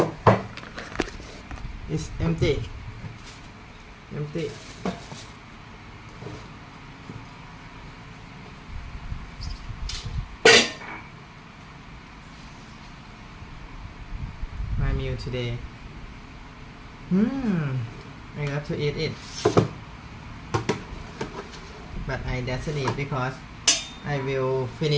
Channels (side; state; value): both; identical; correlation 1.00